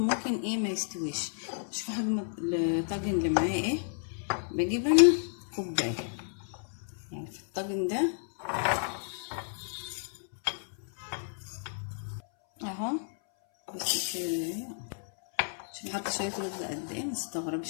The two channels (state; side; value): silent; right; 57 dB below the other